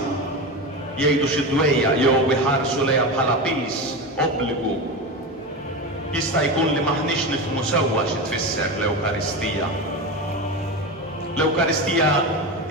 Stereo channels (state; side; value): normal; both; correlation 0.21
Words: jgħidu xi dwejja jew iħarsu lejha bħala pis, obbligu. Jista' jkun li maħniex nifhmu sewwa xi tfisser l-Ewkaristija. L-Ewkaristija